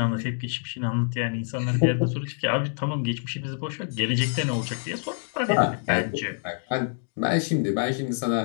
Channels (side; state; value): right; silent; digital silence